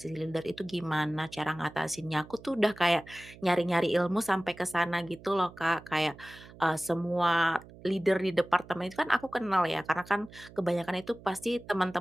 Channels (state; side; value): noise; right; hum, 20 dB below the sound